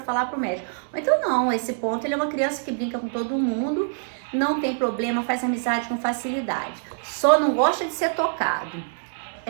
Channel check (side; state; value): left; silent; 59 dB below the other